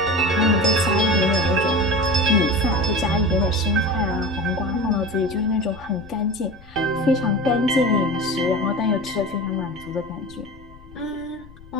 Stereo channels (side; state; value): left; noise; rumble, 21 dB below the sound